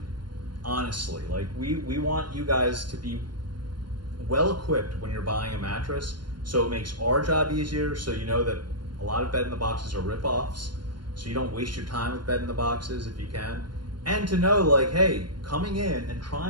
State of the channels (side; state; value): left; late; 0.71 ms